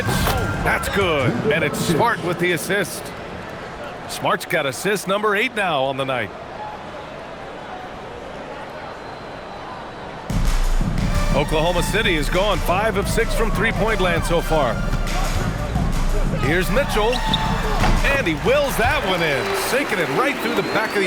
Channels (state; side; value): identical; both; correlation 1.00